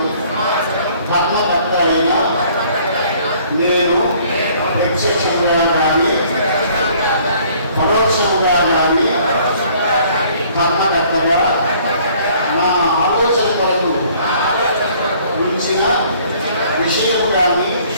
ధర్మకర్త అయిన నేను ప్రత్యక్షముగా కానీ పరోక్షముగా కానీ ధర్మకర్తగా నా ఆలోచన కొరకు ఉంచిన విషయము కానీ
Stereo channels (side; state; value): both; inverted; correlation -0.58